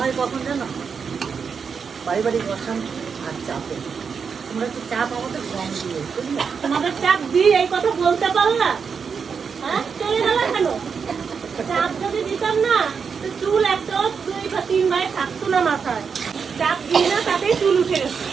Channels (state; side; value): quieter; left; 6.0 dB